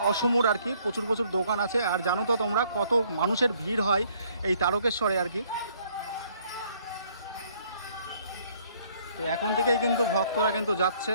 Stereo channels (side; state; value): both; inverted; correlation -0.64